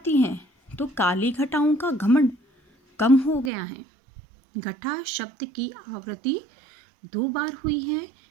है तो काली घटाओं का घमंड कम हो गया है। घटा शब्द की आवृत्ति 2 बार हुई है,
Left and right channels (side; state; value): left; drops out; at 3.5 s